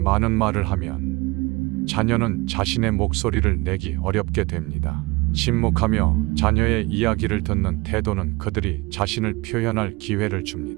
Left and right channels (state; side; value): quieter; left; 23.8 dB